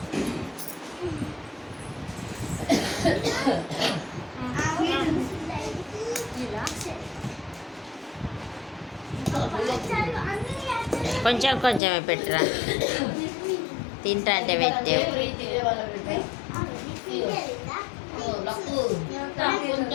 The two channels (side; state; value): right; drops out; at 11.8 s